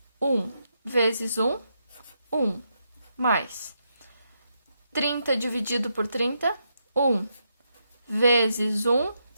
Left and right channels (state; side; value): inverted; both; correlation -0.81